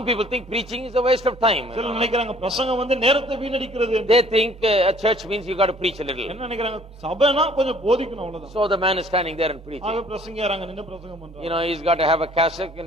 people think preaching is a waste of time. சிலர் நினைக்கிறாங்க பிரசங்கம் நேரத்தை வீணடிக்கிறது. They think a church means you got to preach a little. என்ன நினைக்கிறாங்க சபைனா கொஞ்சம் போதிக்கணும் அவ்வளவுதான். So the man is standing there and preaching. ஆக பிரசங்கியாராங்க நின்னு பிரசங்கம் பண்றாங்க. You know, he's got to have a cassock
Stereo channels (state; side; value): normal; both; correlation 0.56